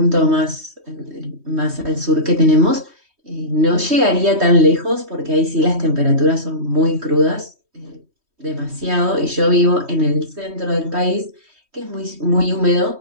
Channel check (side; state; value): left; late; 3.2 ms